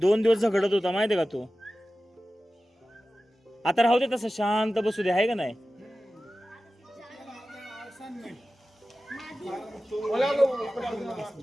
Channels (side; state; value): both; normal; correlation 0.95